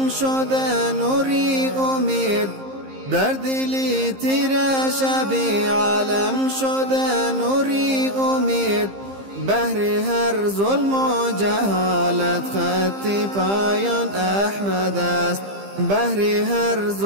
شده نوری امید، در دلی تیره شبی عالم شده نوری امید، بهر هر ظلم و جهالت خط پایان احمد است، بهر هر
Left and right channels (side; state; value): left; late; 15 ms